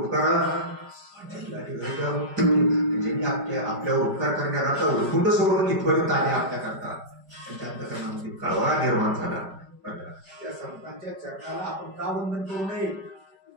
ज्यांनी आपल्यावर उपकार करण्याकरता उठून सोडून इथपर्यंत आले आपल्याकरता, त्यांच्या अंतकरणामध्ये कळवळा निर्माण झाला. त्या संतांच्या चरणाला आपण का वंदन करू नये?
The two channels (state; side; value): late; left; 5.1 ms